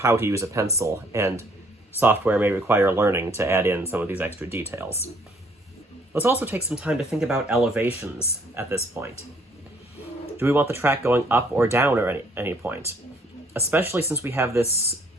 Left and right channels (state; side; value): normal; both; correlation 0.63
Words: to use a pencil, and software may require learning to add in some of these extra details. Let's also take some time to think about elevations at this point. Do we want the track going up or down at any point? Especially since we have this